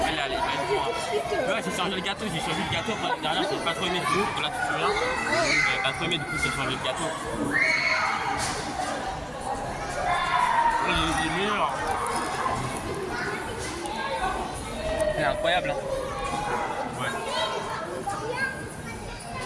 allez, allez. Ouais, j'ai changé le gâteau, j'ai changé le gâteau. L'année dernière, j'ai pas trop aimé. Là, tu te souviens? J'avais pas trop aimé, du coup, j'ai changé le gâteau. Il est meilleur. C'est incroyable, hein. Ouais.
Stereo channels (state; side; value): identical; both; correlation 1.00